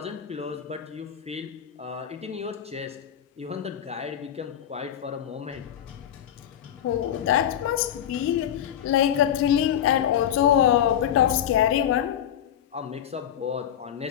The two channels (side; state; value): right; quieter; 10.1 dB